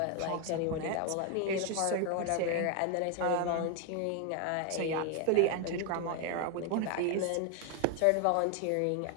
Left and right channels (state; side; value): different; both; correlation 0.01